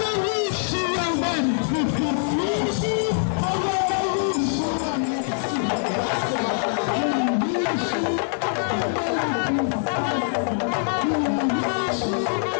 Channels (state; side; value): silent; right; 63 dB below the other